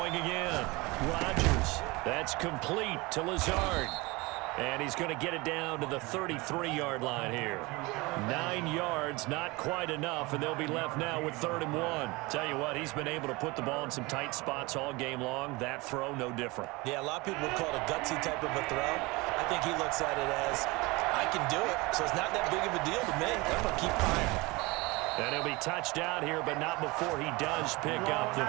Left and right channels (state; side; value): quieter; left; 23.9 dB